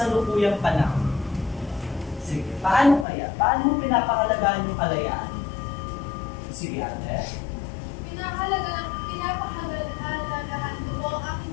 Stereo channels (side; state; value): right; drops out; at 3.1 s